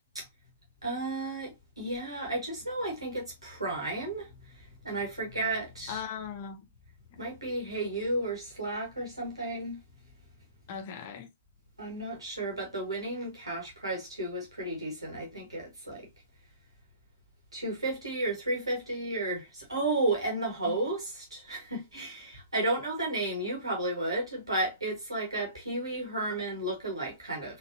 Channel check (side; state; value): both; inverted; correlation -0.44